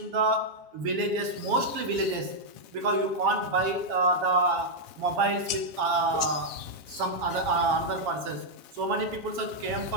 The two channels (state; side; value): late; left; 7.3 ms